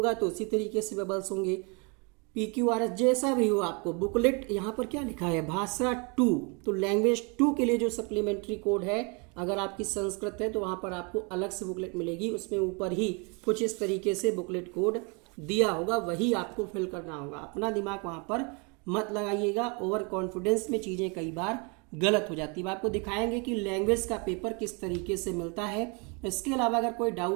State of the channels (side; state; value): left; quieter; 32.3 dB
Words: तो उसी तरीके से बबल्स होंगे। PQRS जैसा भी हो आपको बुकलेट, यहाँ पर क्या लिखा है, भाषा 2, तो लैंग्वेज 2 के लिए जो सप्लीमेंट्री कोड है, अगर आपकी संस्कृत है तो वहाँ पर आपको अलग से बुकलेट मिलेगी, उसमें ऊपर ही कुछ इस तरीके से बुकलेट कोड दिया होगा, वही आपको फिल करना होगा। अपना दिमाग वहाँ पर मत लगाइएगा, ओवर कॉन्फिडेंस में चीज़ें कई बार गलत हो जाती है। आपको दिखाएंगे कि लैंग्वेज का पेपर किस तरीके से मिलता है। इसके अलावा अगर कोई